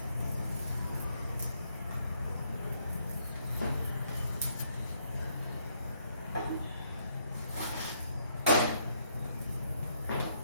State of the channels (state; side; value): inverted; both; correlation -0.71